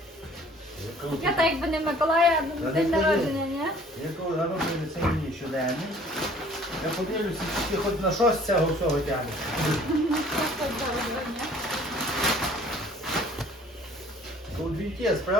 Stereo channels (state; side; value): normal; both; correlation 0.53